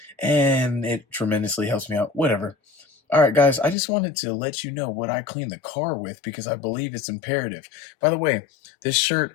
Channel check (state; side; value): drops out; right; at 3.8 s